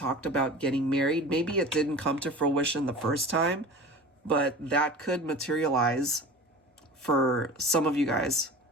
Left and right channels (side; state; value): both; normal; correlation 0.36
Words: about getting married, maybe it didn't come to fruition the first time, but that could materialize for some of you guys